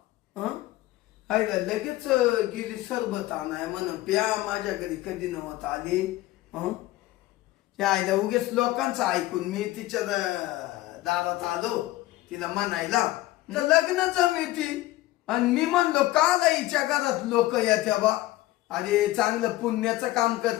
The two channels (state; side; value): quieter; right; 16.9 dB